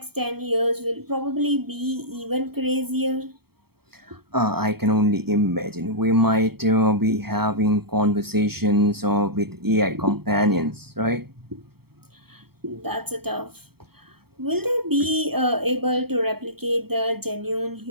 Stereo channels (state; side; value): late; left; 0.95 ms